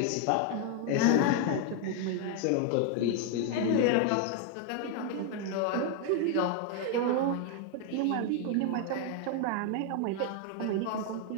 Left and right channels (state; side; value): different; both; correlation 0.00